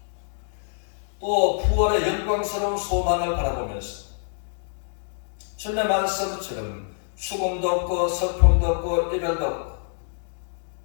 또 부활의 영광스러운 소망을 바라보면서 주님의 말씀처럼 죽음도 없고 슬픔도 없고 이별도 없고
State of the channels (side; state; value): right; silent; digital silence